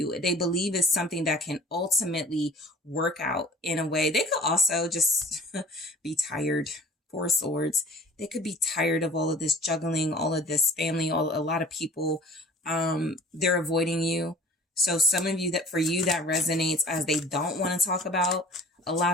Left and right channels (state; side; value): normal; both; correlation 0.47